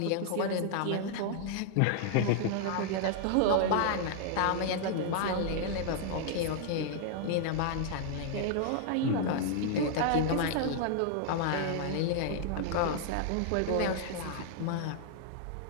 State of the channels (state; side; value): different; both; correlation -0.01